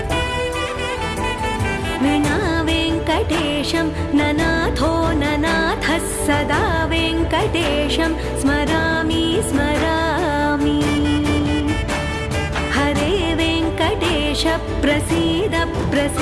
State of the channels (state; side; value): identical; both; correlation 1.00